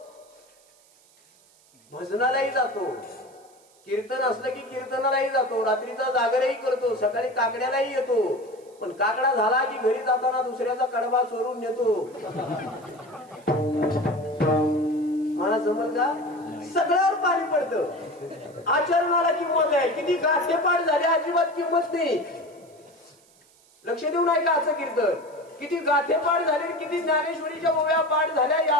भजनालाही जातो, कीर्तन असलं की कीर्तनालाही जातो, रात्रीचा जागरही करतो, सकाळी काकड्यालाही येतो, पण काकडा झाला की घरी जाताना दुसऱ्याचा कडबा चोरून नेतो. मला जमल का? सगळ्यावर पाणी पडतं. आचरणाला किंमत आहे. किती गाठेपाठ झाले, अजिबात किंमत नाही. लक्ष देऊन ऐका आजचं कीर्तन. किती गाठेपाठ झाले, किती ज्ञानेश्वरीच्या ओव्या पाठ झाल्या,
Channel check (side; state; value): right; noise; hiss, 30 dB below the sound